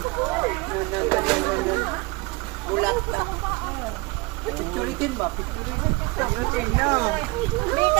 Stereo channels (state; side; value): quieter; left; 24.3 dB